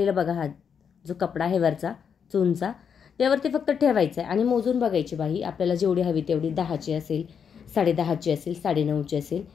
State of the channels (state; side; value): quieter; right; 7.1 dB